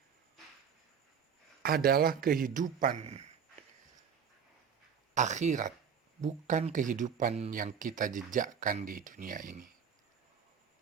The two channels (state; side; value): quieter; left; 7.3 dB